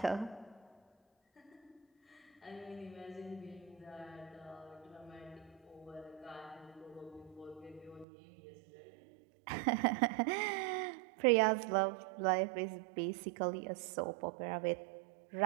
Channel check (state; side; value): drops out; left; at 8.1 s